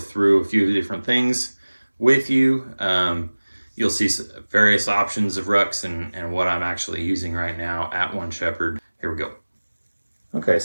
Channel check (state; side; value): inverted; both; correlation -1.00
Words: a few different things with you. You'll see various options of rucks and what I'm actually using right now at 1Shepherd. Here we go. Okay,